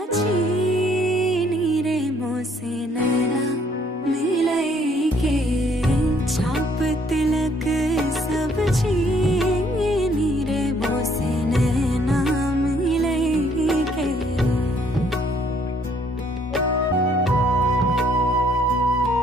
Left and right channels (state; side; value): normal; both; correlation 0.65